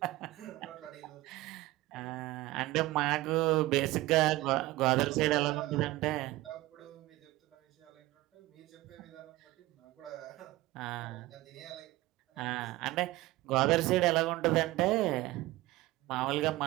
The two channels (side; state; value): left; quieter; 18.0 dB